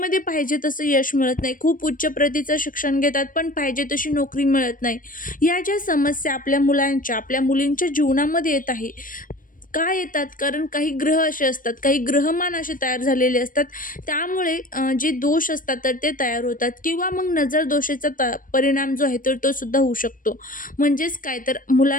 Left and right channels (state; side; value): late; right; 0.40 ms